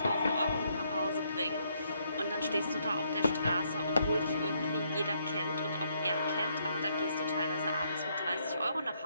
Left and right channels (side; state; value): both; inverted; correlation -0.73